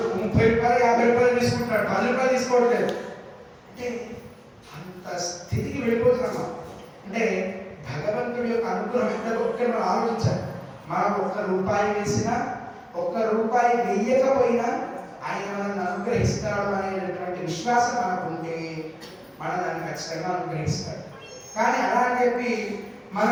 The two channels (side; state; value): both; identical; correlation 1.00